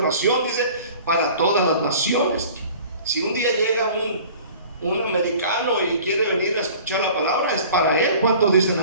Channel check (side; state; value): both; inverted; correlation -0.46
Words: dice, para todas las naciones. Si un día llega un americano y quiere venir a escuchar la palabra, es para él. ¿Cuántos dicen